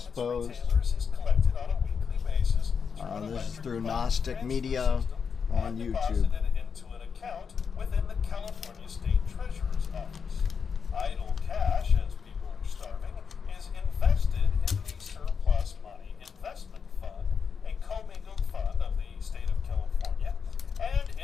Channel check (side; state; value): right; quieter; 6.2 dB